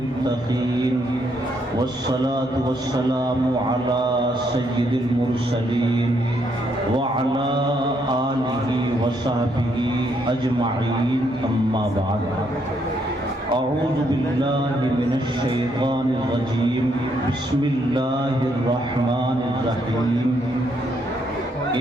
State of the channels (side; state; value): both; normal; correlation 0.73